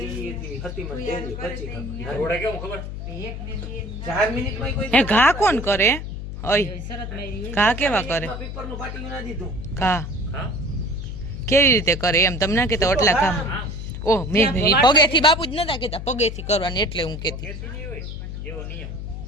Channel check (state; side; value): noise; left; hum, 7 dB below the sound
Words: ઘા કોણ કરે? ઘા કેવા કરે? ઘા કેવી રીતે કરે એમ તમને ના કેતા? ઓટલા કામ. ઓહ મેં પગેથી બાપુ જ નતા કેતા પગેથી કરવાનું એટલે હું કેતી.